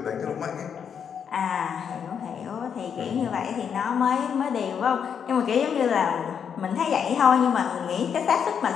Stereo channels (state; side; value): quieter; right; 7.5 dB